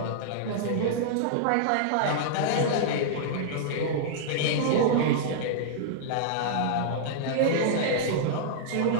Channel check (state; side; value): different; both; correlation -0.02